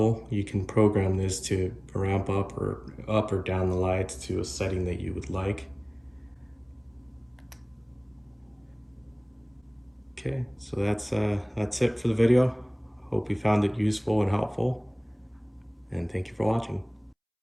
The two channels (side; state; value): both; identical; correlation 1.00